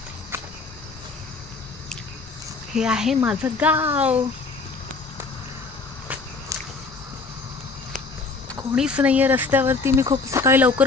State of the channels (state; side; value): quieter; right; 4.1 dB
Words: हे आहे माझं गाव. कोणीच नाहीये रस्त्यावरती. मी खूप सकाळी